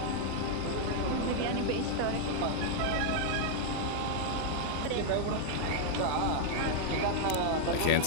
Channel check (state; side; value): different; both; correlation 0.00